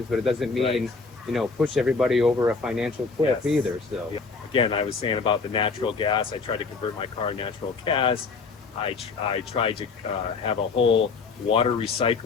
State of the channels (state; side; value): quieter; right; 4.6 dB